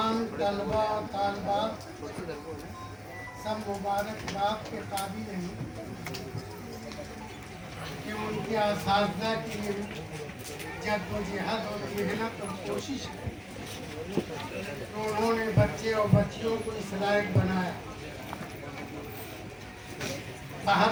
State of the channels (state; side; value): identical; both; correlation 1.00